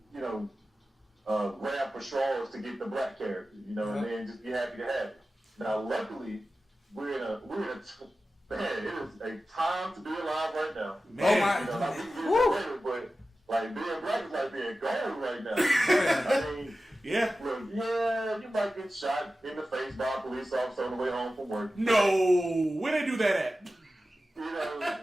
you know, grab for straws to get the black character, you know, and then just be happy to have it. Now, luckily, we're in a man. It is a time to be alive right now. Man. You know, like, we get later, but like being black is like being gold right now. I mean, look, you might get shot in the face by a police officer on the way home from work. No, where they do that at? You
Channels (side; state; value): both; normal; correlation 0.94